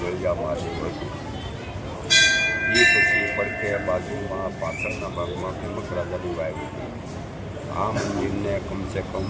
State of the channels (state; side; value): identical; both; correlation 1.00